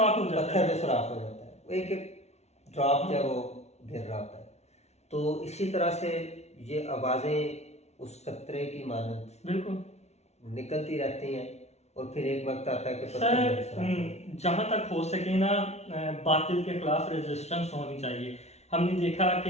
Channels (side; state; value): right; late; 0.31 ms